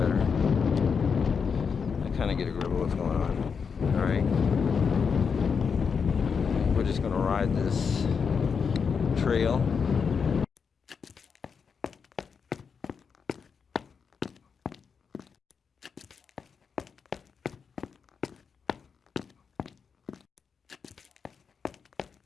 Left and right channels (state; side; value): quieter; right; 6.0 dB